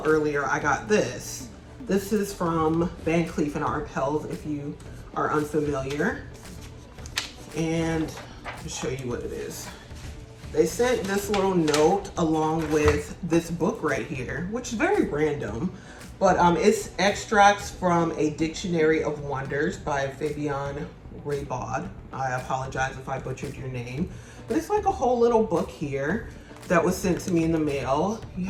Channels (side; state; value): both; identical; correlation 1.00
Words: earlier, I got this. This is from Van Cleef and Arpels, if you are unfamiliar. And I'll show you what it is. They sent this little note along with this book right here, which is very random, but it's extracts from A Dictionary of Wonders by Fabian Raybaud. I apologize if I butchered your name, but it's like a whole little book here that was sent to me in the mail. You